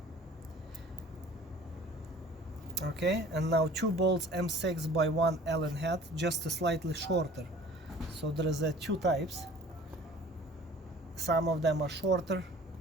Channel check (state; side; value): normal; both; correlation 0.48